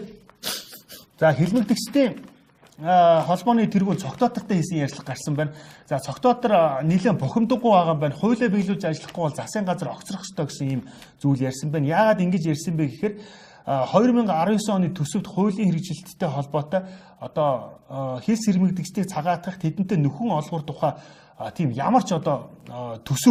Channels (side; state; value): both; identical; correlation 1.00